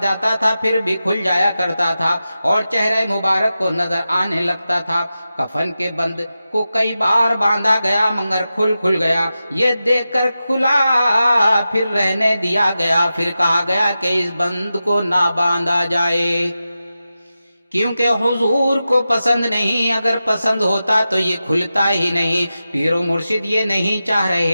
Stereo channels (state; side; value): inverted; both; correlation -0.92